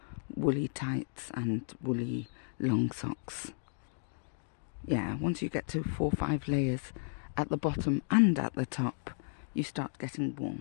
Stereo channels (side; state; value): right; silent; digital silence